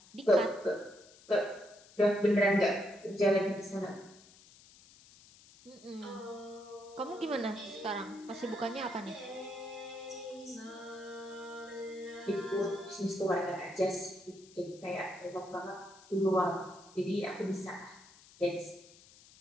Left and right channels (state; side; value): noise; left; hiss, 23 dB below the sound